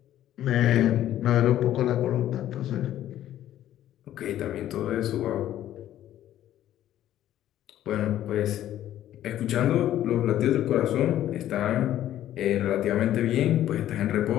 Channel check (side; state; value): right; quieter; 12.4 dB